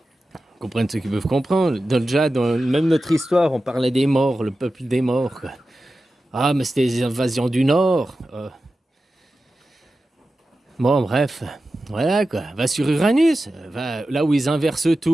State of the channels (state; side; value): normal; both; correlation 0.93